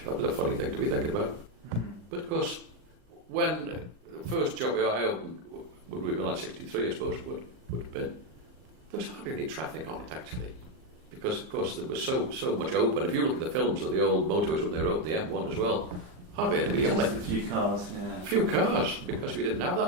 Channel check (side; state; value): left; late; 39 ms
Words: that was a funny thing to be thinking about. But of course, when the first job I opened would be like 63, I suppose it would have been, there was hardly any traffic on it actually. Because, of course, there was so much open. If you look at the films of the old motorways when they wrote the M1 as well, hardly anybody on it. A few cars, yeah. A few cars, because we didn't have